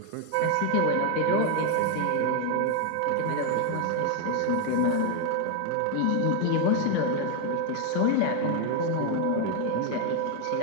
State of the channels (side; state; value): both; different; correlation 0.01